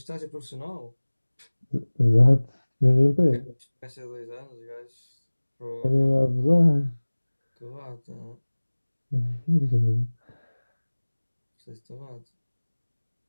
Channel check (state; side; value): inverted; both; correlation -1.00